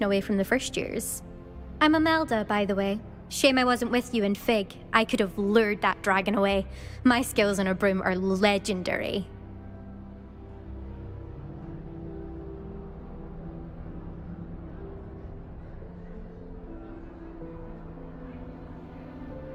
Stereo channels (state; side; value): identical; both; correlation 1.00